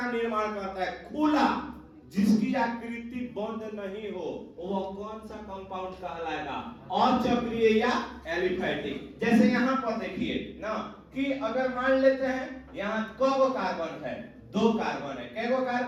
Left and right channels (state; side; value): identical; both; correlation 1.00